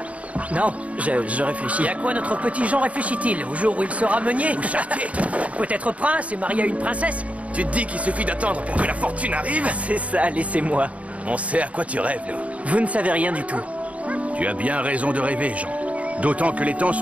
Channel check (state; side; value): late; left; 0.067 ms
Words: Non, je réfléchis. Et à quoi notre petit Jean réfléchit-il? Au jour où il sera meunier? Ou chartier? Peut-être prince et marié à une princesse? Tu te dis qu'il suffit d'attendre pour que la fortune arrive? C'est ça, laissez-moi. On sait à quoi tu rêves, nous. Vous ne savez rien du tout. Tu as bien raison de rêver, Jean. D'autant que les temps